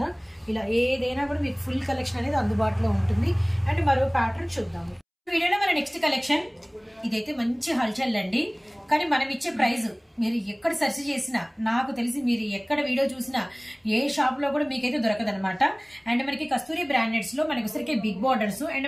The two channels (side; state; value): both; identical; correlation 1.00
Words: ఇలా ఏదైనా కూడా మీకు ఫుల్ కలెక్షన్ అనేది అందుబాటులో ఉంటుంది అండ్ మరో ప్యాటర్న్ చూద్దాము వీడియోలో మన నెక్స్ట్ కలెక్షన్ ఇదైతే మంచి హల్చల్ అండి కానీ మనం ఇచ్చే ప్రైస్ మీరు ఎక్కడ సెర్చ్ చేసినా నాకు తెలిసి మీరు ఎక్కడ వీడియో చూసినా ఏ షాప్ లో కూడా మీకైతే దొరకదనమాట అండ్ మనకి కస్తూరి బ్రాండెడ్స్ లో మనకి వచ్చరికి బిగ్ బార్డర్స్ అండ్